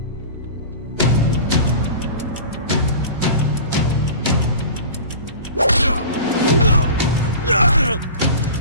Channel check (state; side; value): inverted; both; correlation -0.36